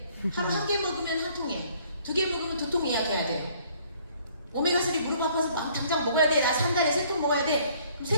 하루 1개 먹으면 1통이야. 2개 먹으면 2통 예약해야 돼. 오메가3 무릎 아파서 막 당장 먹어야 돼. 나 3달에 3통 먹어야 돼.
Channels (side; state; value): both; inverted; correlation -0.60